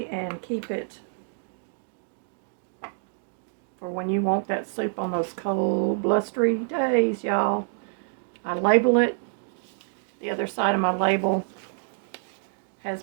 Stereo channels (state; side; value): silent; left; digital silence